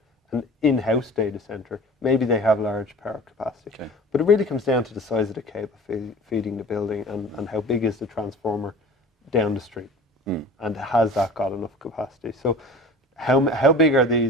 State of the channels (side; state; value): both; normal; correlation 0.41